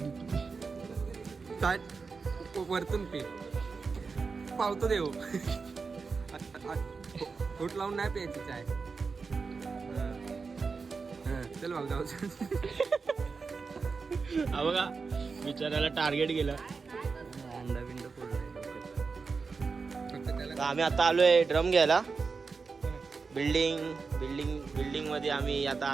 वरतून पे पावतो देव. होट लावून नाही प्यायची चाय. चल भाऊ जाऊ. हा बघा बिचाराला टार्गेट केलं. अंडा बिंड फोडलाय. आम्ही आता आलोय ड्रम घ्यायला. बिल्डिंग मध्ये आम्ही आता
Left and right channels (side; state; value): left; quieter; 4.8 dB